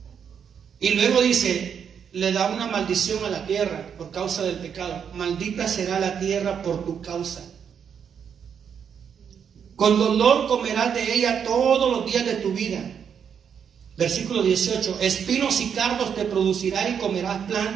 Y luego dice, le da una maldición a la tierra por causa del pecado. Maldita será la tierra por tu causa. Con dolor comerás de ella todos los días de tu vida. Versículo 18, espinos y cardos te producirá y comerás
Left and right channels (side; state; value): left; quieter; 7.6 dB